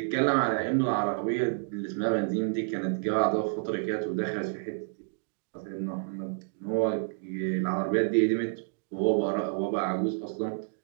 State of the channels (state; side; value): silent; left; digital silence